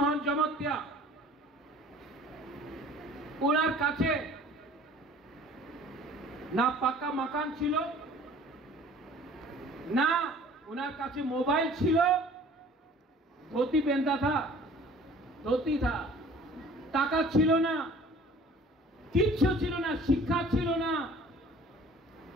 জমতিয়া, ওনার কাছে না পাকা মাকান ছিল, না ওনার কাছে মোবাইল ছিল, धोती पहनता था, धोती था, টাকা ছিল না, কিচ্ছু ছিল না, শিক্ষা ছিল না।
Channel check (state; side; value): normal; both; correlation 0.49